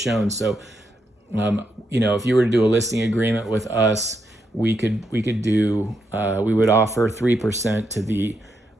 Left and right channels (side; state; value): both; normal; correlation 0.81